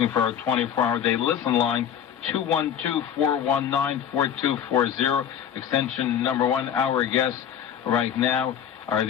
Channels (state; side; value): quieter; right; 9.0 dB